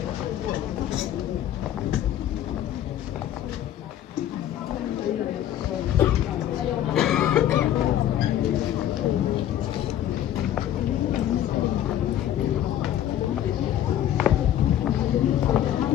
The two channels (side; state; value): right; quieter; 11.4 dB